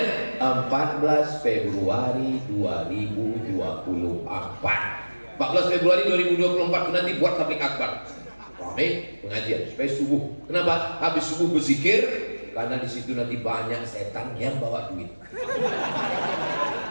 14 Februari 2024. 14 Februari 2024 nanti buat tablik akbar. rame pengajian supaya subuh. Kenapa? Habis subuh berzikir, karena di situ nanti banyak setan yang bawa duit.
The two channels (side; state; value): both; inverted; correlation -1.00